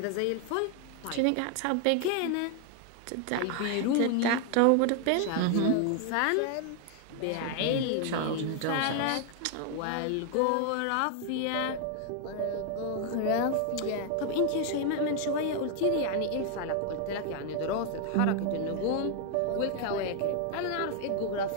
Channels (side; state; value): both; different; correlation 0.00